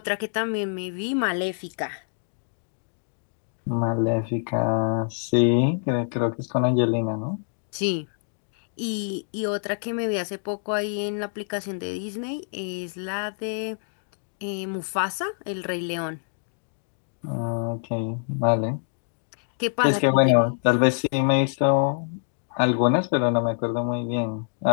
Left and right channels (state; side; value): silent; right; digital silence